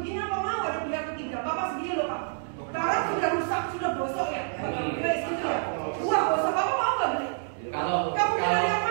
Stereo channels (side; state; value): left; silent; 59 dB below the other